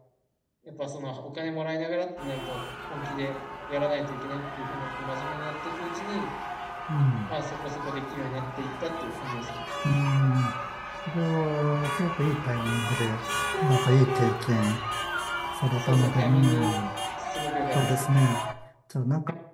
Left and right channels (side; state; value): both; identical; correlation 1.00